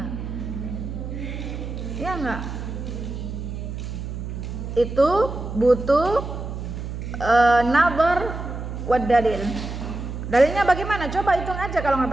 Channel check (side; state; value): right; noise; hum, 7 dB below the sound